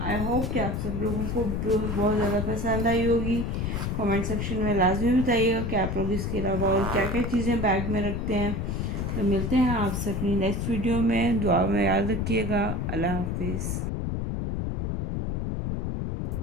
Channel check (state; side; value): noise; left; rumble, 2 dB below the sound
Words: आई होप कि आप सब लोगों को बहुत ज़्यादा पसंद आई होगी। कमेंट सेक्शन में लाजमी बताइएगा कि आप लोग इसके अलावा और क्या क्या चीज़ें बैग में रखते हैं। तो मिलते हैं आपसे अपनी नेक्स्ट वीडियो में, दुआ में याद रखिएगा। अल्लाह हाफिज़।